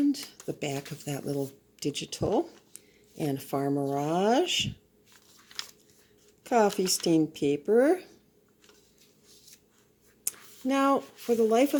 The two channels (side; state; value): both; identical; correlation 1.00